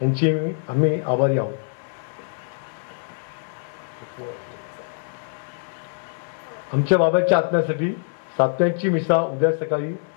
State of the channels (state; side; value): silent; right; 63 dB below the other